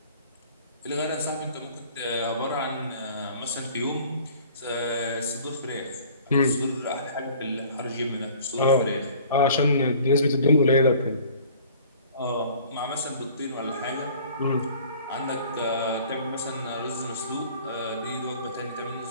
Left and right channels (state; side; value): inverted; both; correlation -0.50